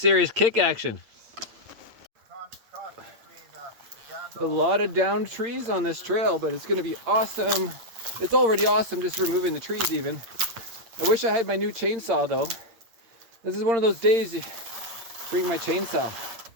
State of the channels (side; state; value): left; late; 8.7 ms